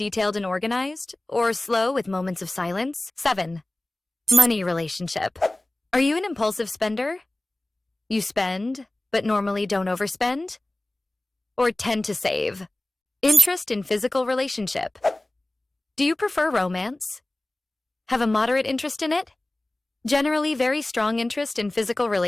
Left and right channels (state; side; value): normal; both; correlation 0.96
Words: and organized, or slow with moments of silence? 7. Money relationship. Are you an impulsive spender? You spend, but normally don't overspend? Or tend to save? Interest in physical relationship. Do you prefer romance? Have a moderate interest in it? Generally very strong interest in physical